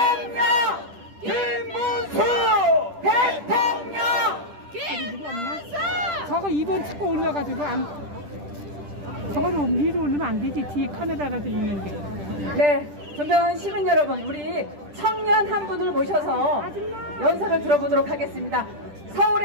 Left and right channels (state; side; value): late; left; 10 ms